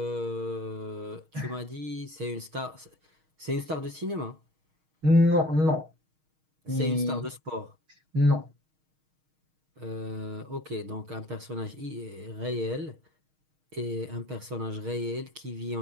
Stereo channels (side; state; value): left; late; 6.4 ms